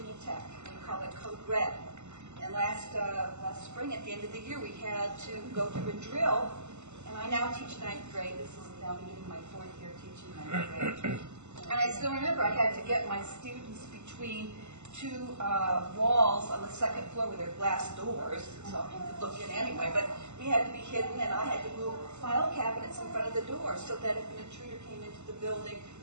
Tech. We call it Code Red. And last spring, at the end of the year, we had to go through a drill. And I now teach 9th grade. This is now beginning my 4th year teaching 9th grade. And I still remember I had to get my students between two walls on the 2nd floor with their glass doors, so you could look in anyway. But we had to be hidden, and I had to move file cabinets in front of the door so that if an intruder came into the building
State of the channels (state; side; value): late; left; 0.82 ms